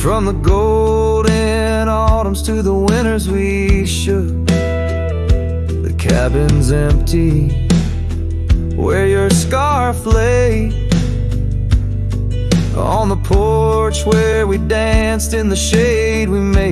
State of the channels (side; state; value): both; identical; correlation 1.00